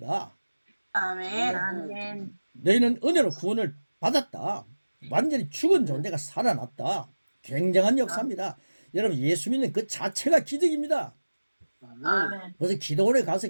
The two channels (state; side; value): inverted; both; correlation -1.00